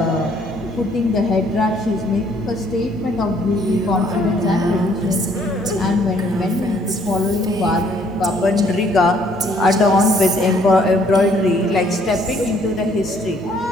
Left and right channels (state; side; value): normal; both; correlation 0.63